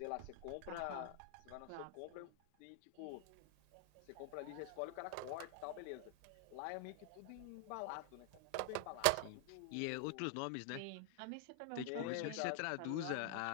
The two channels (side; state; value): both; different; correlation 0.00